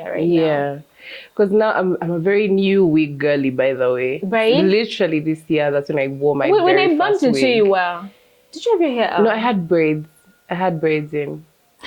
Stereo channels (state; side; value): identical; both; correlation 1.00